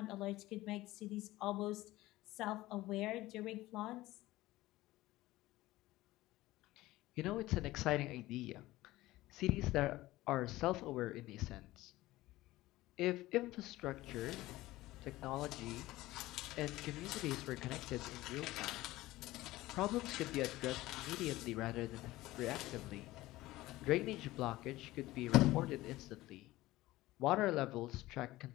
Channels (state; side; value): quieter; right; 17.6 dB